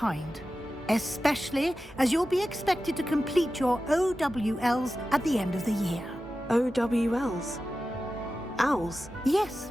Especially as you'll be expected to complete your OWLs at the end of the year. OWLs? Owls? Yes,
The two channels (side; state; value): both; normal; correlation 0.93